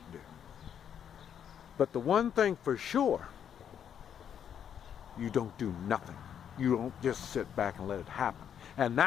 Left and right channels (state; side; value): quieter; right; 8.7 dB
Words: do. But the one thing for sure, you don't do nothing. You don't just sit back and let it happen. And